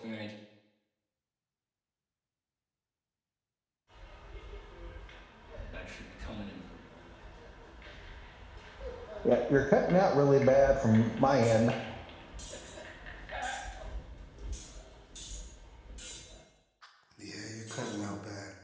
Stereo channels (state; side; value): identical; both; correlation 1.00